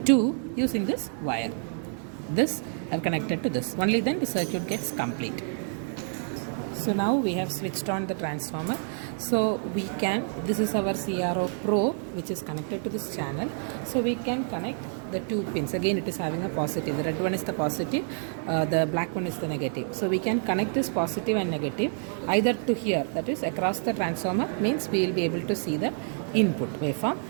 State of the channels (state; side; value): silent; left; 58 dB below the other